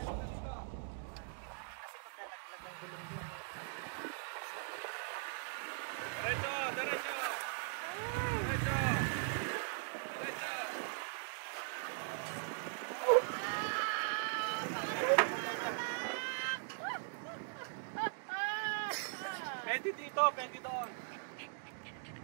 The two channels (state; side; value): silent; left; digital silence